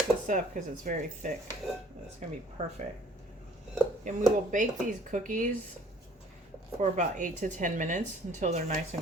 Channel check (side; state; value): both; normal; correlation 0.56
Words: this up because it's very thick. It's gonna be perfect. And we will bake these cookies for about 8 to 10 minutes until they're nice